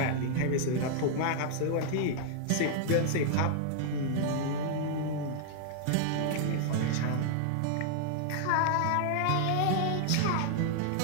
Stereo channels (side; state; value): both; different; correlation -0.01